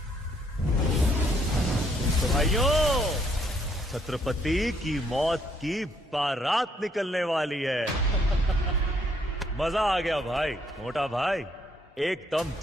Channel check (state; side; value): normal; both; correlation 0.69